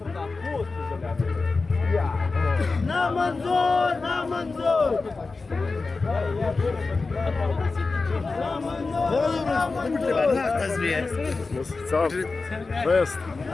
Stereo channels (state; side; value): quieter; right; 3.9 dB